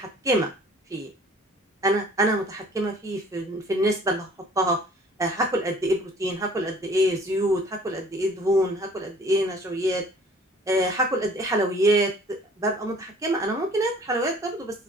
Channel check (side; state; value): both; normal; correlation 0.52